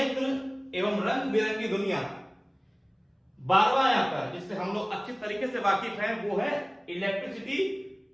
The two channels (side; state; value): both; identical; correlation 1.00